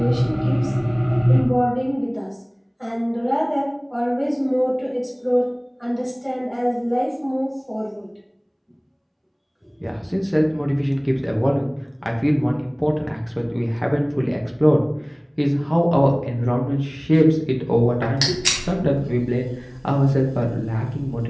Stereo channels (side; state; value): both; identical; correlation 1.00